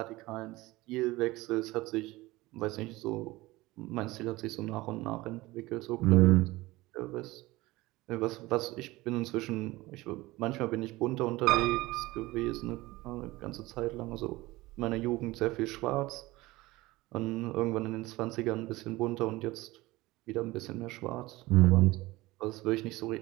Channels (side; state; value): left; quieter; 19.9 dB